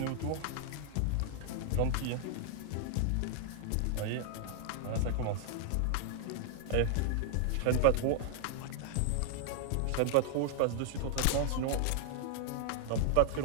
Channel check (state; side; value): different; both; correlation -0.01